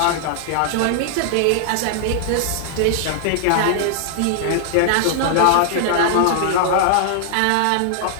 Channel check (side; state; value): both; different; correlation 0.00